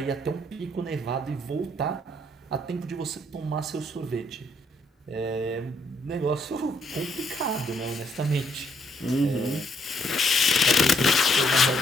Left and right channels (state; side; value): normal; both; correlation 0.70